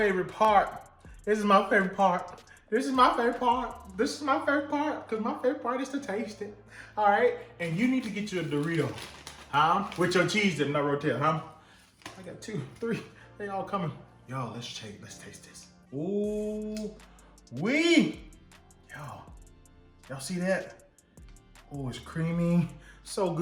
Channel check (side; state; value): both; identical; correlation 1.00